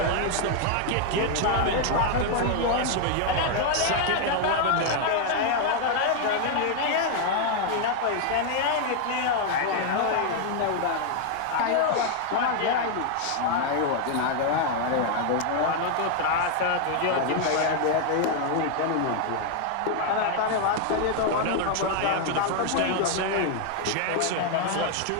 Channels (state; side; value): different; both; correlation 0.00